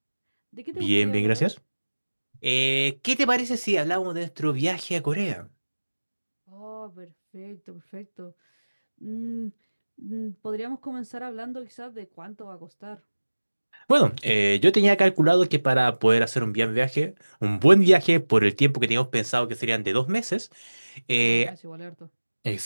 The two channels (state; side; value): inverted; both; correlation -1.00